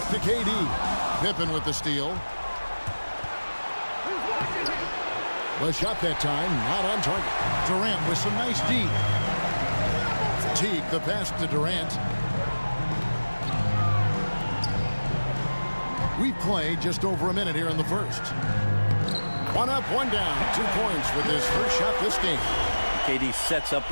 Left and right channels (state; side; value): inverted; both; correlation -1.00